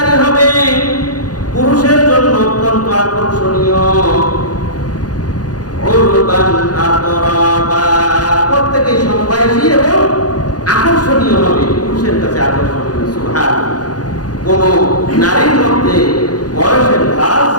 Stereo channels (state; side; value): late; right; 0.69 ms